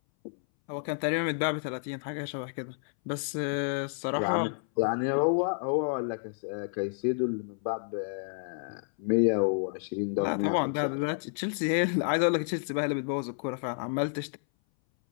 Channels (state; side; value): silent; right; 58 dB below the other